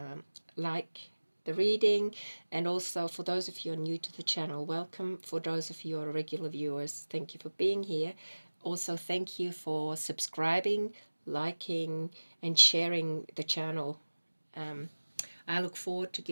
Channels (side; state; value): both; inverted; correlation -1.00